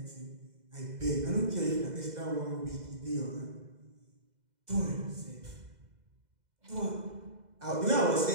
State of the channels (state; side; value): late; left; 2.0 ms